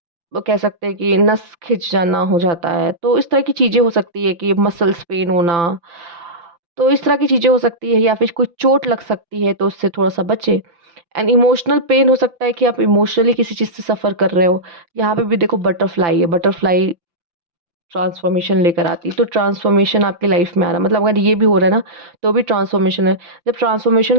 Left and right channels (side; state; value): left; late; 5.9 ms